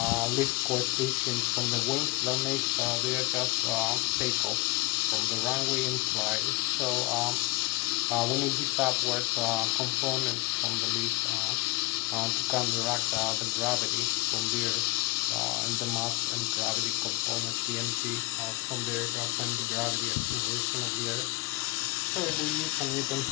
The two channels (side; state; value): right; quieter; 23.5 dB